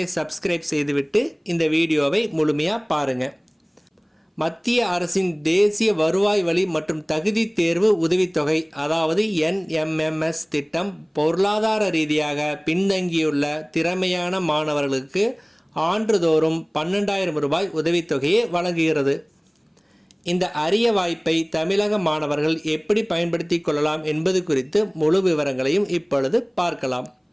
சப்ஸ்கிரைப் செய்துவிட்டு இந்த வீடியோவை முழுமையாக பாருங்கள். மத்திய அரசின் தேசிய வருவாய் வழி மற்றும் தகுதி தேர்வு உதவித்தொகை, அதாவது NMMS திட்டம் பொருளாதார ரீதியாக பின்தங்கியுள்ள திறமையான மாணவர்களுக்கு ஆண்டுதோறும் 12,000 ரூபாய் உதவித்தொகையை வழங்குகிறது. இந்த அரிய வாய்ப்பை தமிழக மாணவர்கள் எப்படி பயன்படுத்தி கொள்ளலாம் என்பது குறித்து முழு விவரங்களையும் இப்பொழுது பார்க்கலாம்.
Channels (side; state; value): both; identical; correlation 1.00